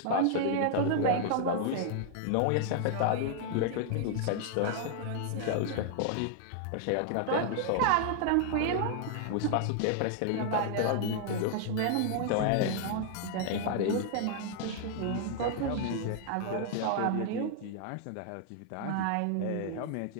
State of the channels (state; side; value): different; both; correlation 0.00